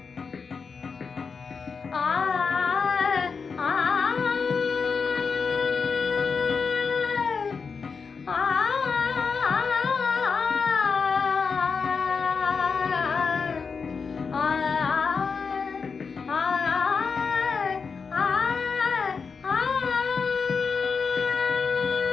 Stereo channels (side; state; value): right; quieter; 5.3 dB